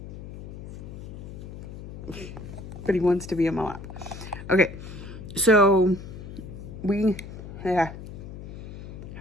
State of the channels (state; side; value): noise; left; hum, 11 dB below the sound